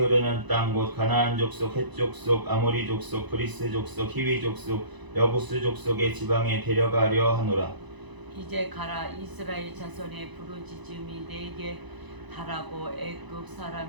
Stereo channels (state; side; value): late; left; 1.0 ms